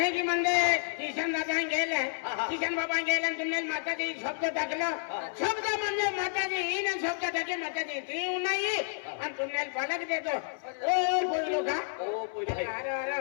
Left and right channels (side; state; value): right; silent; 58 dB below the other